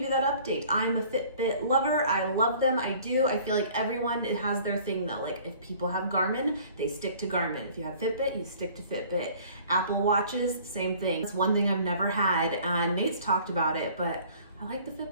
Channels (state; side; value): inverted; both; correlation -0.51